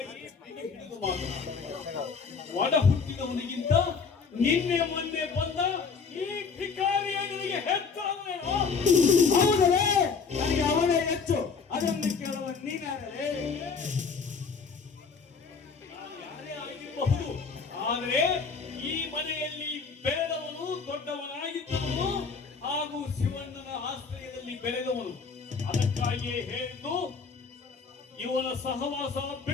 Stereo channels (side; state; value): right; quieter; 5.3 dB